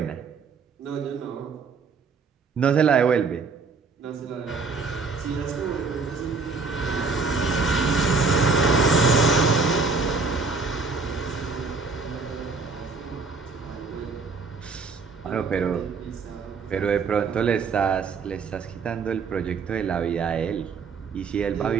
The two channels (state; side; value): quieter; left; 4.6 dB